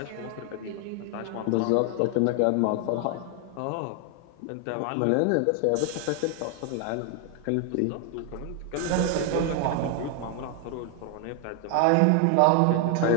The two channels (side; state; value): both; different; correlation 0.00